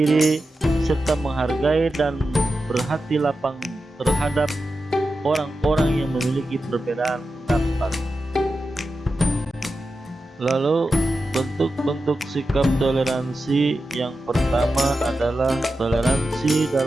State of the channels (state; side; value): normal; both; correlation 0.91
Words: serta menghargai dan berhati lapang terhadap orang-orang yang memiliki perbedaan pendapat. Lalu bentuk-bentuk sikap toleransi yang pertama adalah toleransi